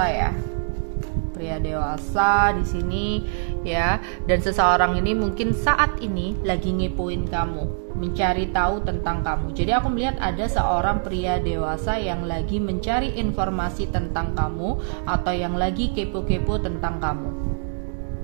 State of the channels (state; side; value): silent; left; digital silence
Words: ya. Pria dewasa di sini ya, dan seseorang ini mungkin saat ini lagi ngepoin kamu, mencari tahu tentang kamu. Jadi aku melihat ada seorang pria dewasa yang lagi mencari informasi tentang kamu atau yang lagi kepo-kepo tentang kamu.